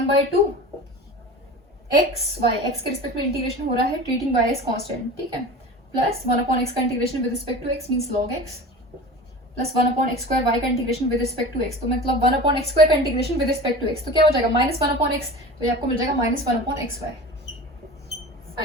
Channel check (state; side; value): normal; both; correlation 0.34